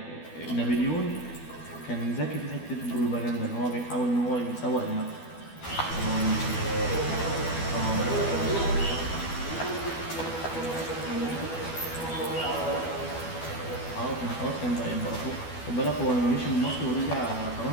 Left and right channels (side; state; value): right; late; 12 ms